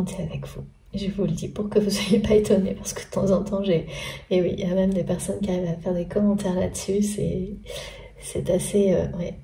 thé avec vous. Je vous le dis pour que vous ne soyez pas étonnés, parce que de temps en temps, et oui, il y a même des personnes qui arrivent à faire des commentaires là-dessus, c'est assez... ouais,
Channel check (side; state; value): both; identical; correlation 1.00